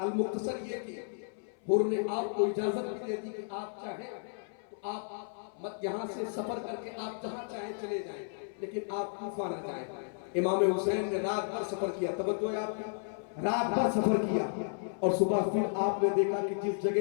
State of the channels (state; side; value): silent; right; 56 dB below the other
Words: یہ کہ حر نے آپ کو اجازت بھی دے دی کہ آپ چاہیں تو آپ یہاں سے سفر کر کے آپ جہاں چاہیں چلے جائیں، لیکن آپ کوفہ نہ جائیں۔ امام حسین نے رات بھر سفر کیا، توجہ ہے آپ کی، رات بھر سفر کیا، اور صبح پھر آپ نے دیکھا کہ جس